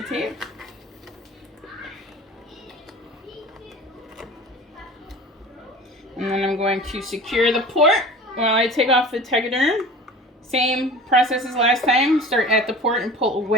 tape. And then I'm going to secure the port while I take off the Tegaderm. Same process as last time. Start at the port and pull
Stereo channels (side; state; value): both; normal; correlation 0.39